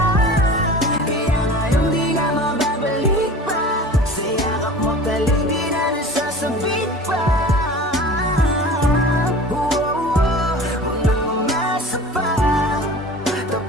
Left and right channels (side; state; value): both; normal; correlation 0.39